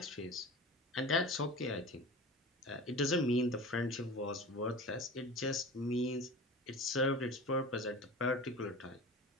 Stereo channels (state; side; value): normal; both; correlation 0.34